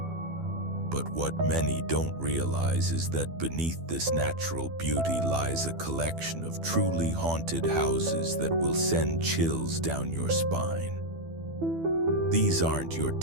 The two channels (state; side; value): late; left; 12 ms